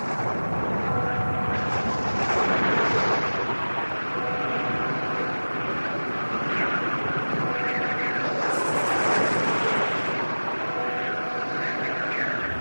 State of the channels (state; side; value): inverted; both; correlation -1.00